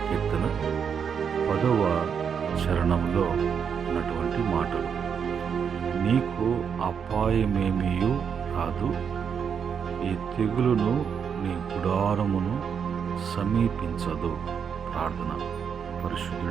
కీర్తన 10వ చరణంలో ఉన్నటువంటి మాటలు. నీకు అపాయమేమీయు రాదు, ఈ తెగులును నీ గుడారమును సమీపించదు. ప్రార్థన.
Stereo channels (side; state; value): left; quieter; 7.1 dB